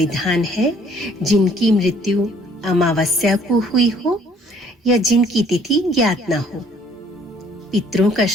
है जिनकी मृत्यु अमावस्या को हुई हो या जिनकी तिथि ज्ञात न हो। पितरों का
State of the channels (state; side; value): normal; both; correlation 0.60